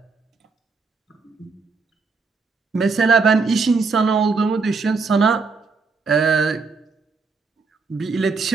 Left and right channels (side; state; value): left; quieter; 4.5 dB